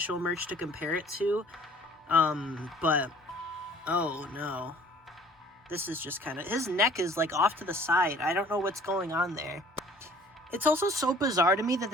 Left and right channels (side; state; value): both; normal; correlation 0.52